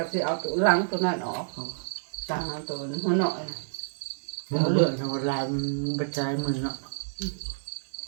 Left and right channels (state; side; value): silent; left; digital silence